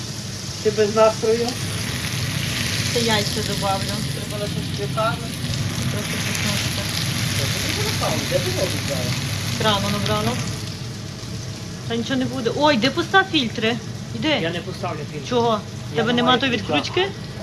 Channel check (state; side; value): identical; both; correlation 1.00